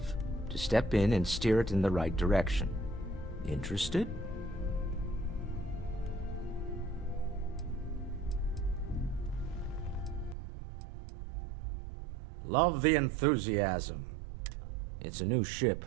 to step in and steer it in the right direction. Interested? Love the enthusiasm. It's a new ship.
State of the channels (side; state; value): left; drops out; at 10.4 s